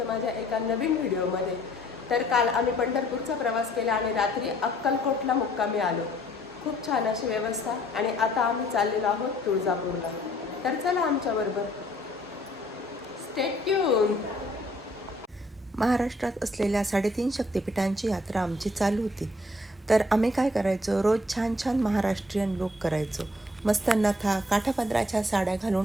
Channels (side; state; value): both; normal; correlation 0.62